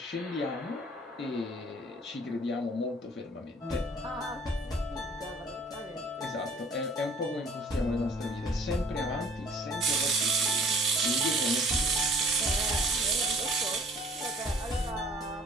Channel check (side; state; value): both; normal; correlation 0.54